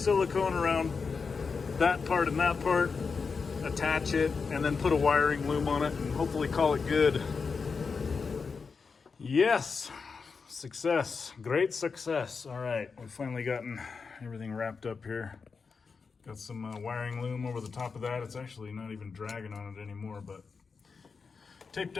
around that part and that part, attach it, and then put a wiring loom on it and hopefully call it good. Yes, success, great success. All right, we've finally gotten everything wrapped up here. Got some wiring loom over the top of that. It's actually not even dragging on it anymore, but taped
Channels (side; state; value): right; quieter; 5.1 dB